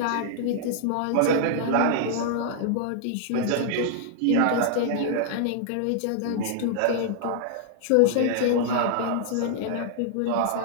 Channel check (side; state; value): both; different; correlation -0.01